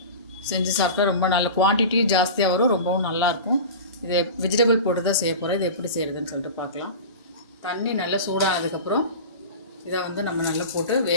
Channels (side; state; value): both; inverted; correlation -0.31